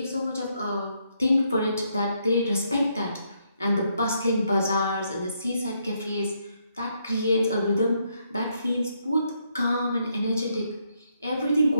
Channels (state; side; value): inverted; both; correlation -0.76